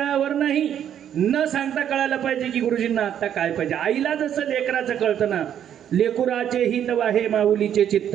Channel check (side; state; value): left; quieter; 9.7 dB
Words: नाही, न सांगता कळायला पाहिजे की गुरुजींना आता काय पाहिजे. आईला जसं लेकराचं कळतं ना, लेकुराचे हित वाहे माऊलीचे चित्त,